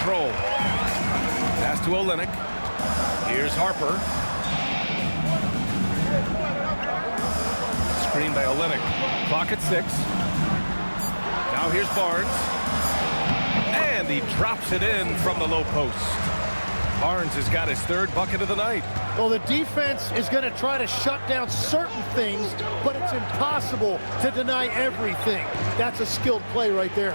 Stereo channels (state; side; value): inverted; both; correlation -1.00